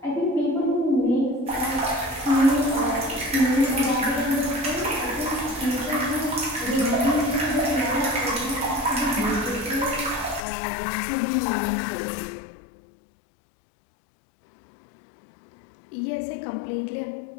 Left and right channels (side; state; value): right; drops out; at 10.4 s